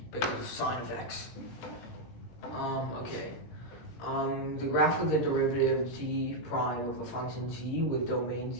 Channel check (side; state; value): right; late; 17 ms